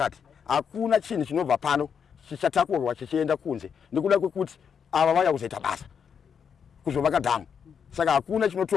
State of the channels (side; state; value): right; quieter; 7.1 dB